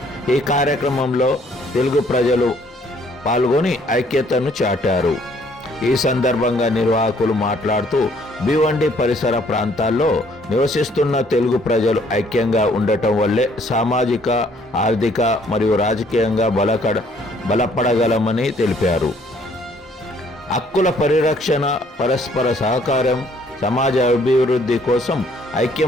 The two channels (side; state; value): both; normal; correlation 0.63